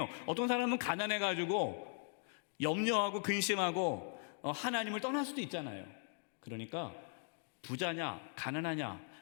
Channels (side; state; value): right; silent; 51 dB below the other